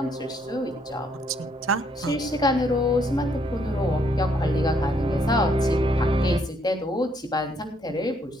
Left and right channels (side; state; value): both; normal; correlation 0.70